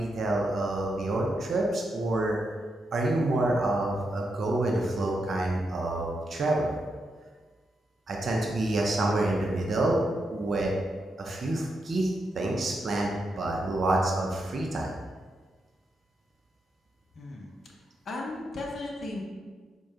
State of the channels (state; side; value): normal; both; correlation 0.84